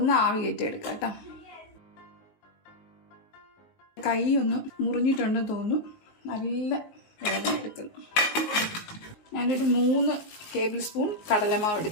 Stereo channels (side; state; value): right; late; 19 ms